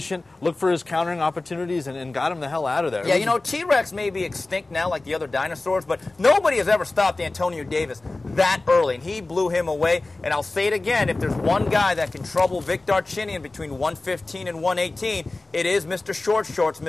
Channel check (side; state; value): right; quieter; 3.1 dB